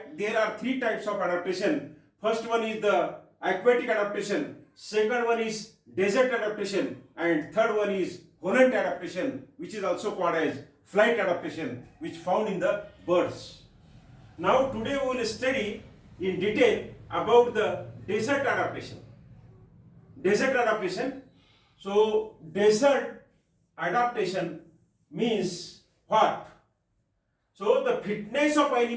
there are 3 types of adaptation. First one is the aquatic adaptation, second one is desert adaptation, and third one is volant adaptation, which is also called as flight adaptation, which found in the birds. Now today we will study in detail about the desert adaptation. Desert adaptation. So desert adaptation means what? So the fitness of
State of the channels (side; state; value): both; identical; correlation 1.00